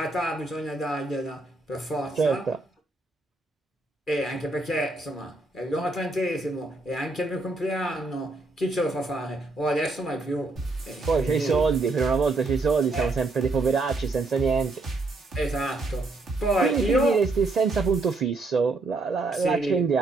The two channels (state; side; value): quieter; left; 3.2 dB